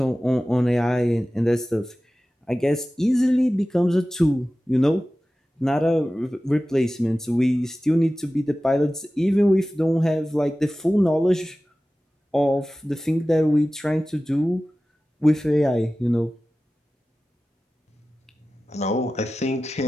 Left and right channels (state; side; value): normal; both; correlation 0.96